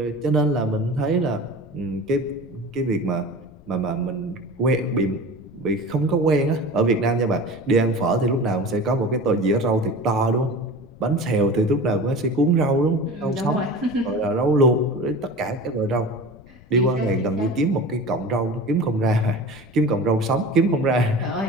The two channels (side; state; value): left; noise; rumble, 23 dB below the sound